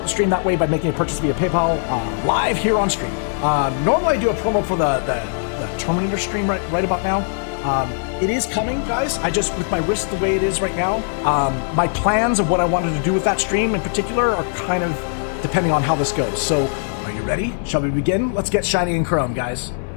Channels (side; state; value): right; silent; 60 dB below the other